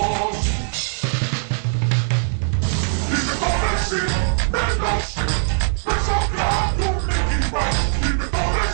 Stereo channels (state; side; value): silent; left; 65 dB below the other